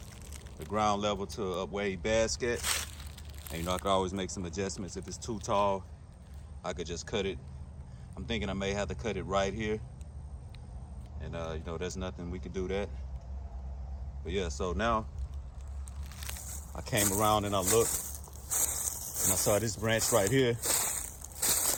ground level to a way basket. And I could always make some adjustments. If it's too tall, I could just cut it. I'm thinking I may have to cut it right here. And there's nothing we could do that. But yeah, so now I came around and I looked and I saw this branch right here.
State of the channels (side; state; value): both; identical; correlation 1.00